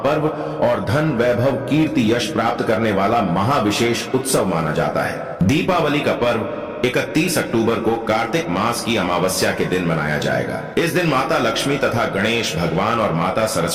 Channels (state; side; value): identical; both; correlation 1.00